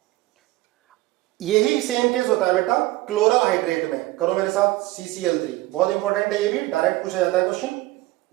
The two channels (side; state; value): left; quieter; 18.5 dB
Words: यही सेम केस होता है बेटा क्लोरल हाइड्रेट में। करो मेरे साथ, CCl3 बहुत इंपॉर्टेंट है, ये भी डायरेक्ट पूछा जाता है क्वेश्चन।